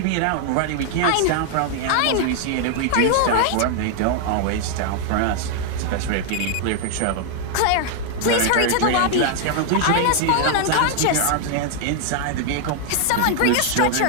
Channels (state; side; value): different; both; correlation 0.00